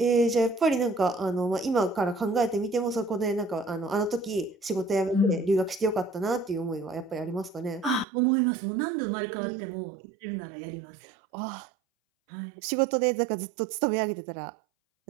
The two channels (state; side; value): drops out; left; at 8.1 s